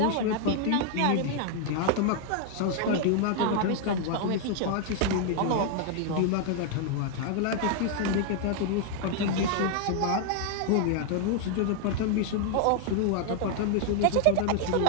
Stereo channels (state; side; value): different; both; correlation 0.00